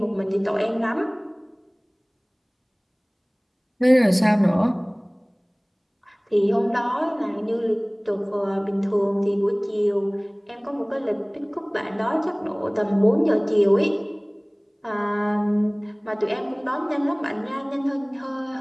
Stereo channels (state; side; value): identical; both; correlation 1.00